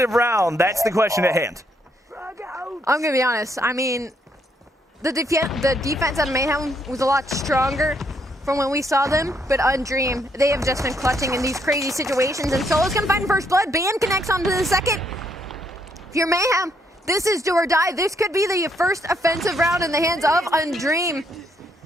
round? That's the question at hand. I'm going to be honest. I mean, the defense on Mayhem was a lot stronger from when we saw them, but Undream, they have just been clutching in these crazy situations, and Solo's gonna find first blood. Band connects onto the second. If you're Mayhem, this is do or die. This could be the first offensive round in the hands of Undream,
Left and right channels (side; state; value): both; normal; correlation 0.73